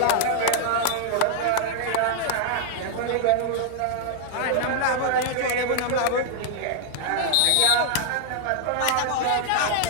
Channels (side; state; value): both; different; correlation -0.01